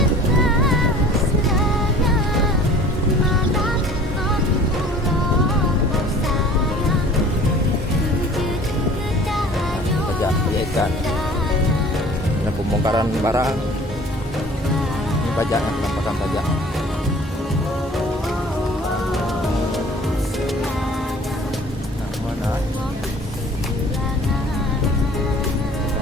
Pajak ikan. Ada pembongkaran barang. Pajaknya, penampakan pajak. Nah, mana?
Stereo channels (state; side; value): normal; both; correlation 0.48